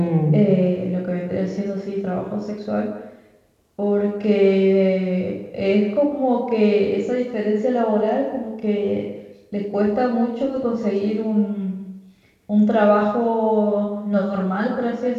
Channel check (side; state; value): both; identical; correlation 1.00